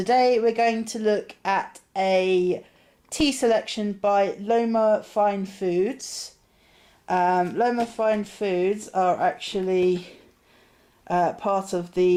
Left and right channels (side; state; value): both; identical; correlation 1.00